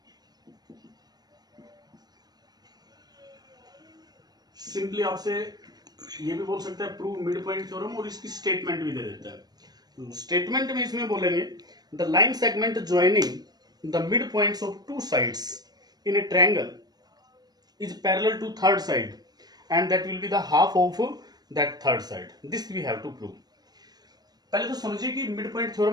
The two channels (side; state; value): left; late; 0.19 ms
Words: Simply आपसे ये भी बोल सकता है प्रूव मिड पॉइंट थ्योरम, और इसकी स्टेटमेंट भी दे देता है। स्टेटमेंट में इसमें बोलेंगे the line segment joining the mid points of to sides in a triangle is parallel to third side and that will be the half of that third side. This we have to prove. पहले तो समझिए कि मिड पॉइंट